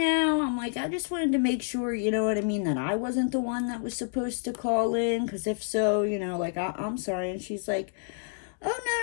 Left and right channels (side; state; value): right; silent; digital silence